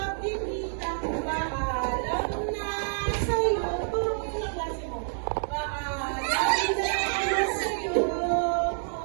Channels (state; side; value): silent; left; digital silence